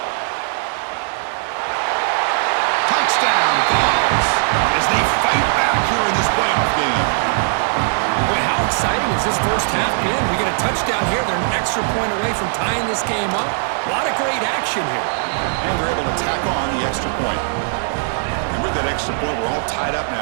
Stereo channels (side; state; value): left; silent; 63 dB below the other